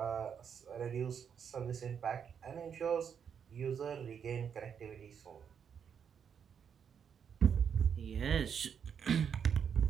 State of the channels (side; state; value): left; quieter; 7.5 dB